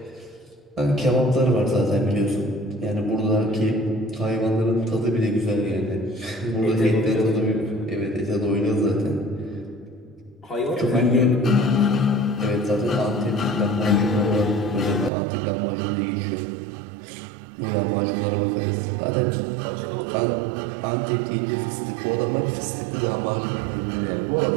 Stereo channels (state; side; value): drops out; left; at 15.1 s